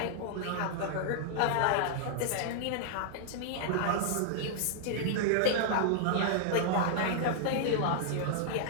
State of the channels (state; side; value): different; both; correlation -0.01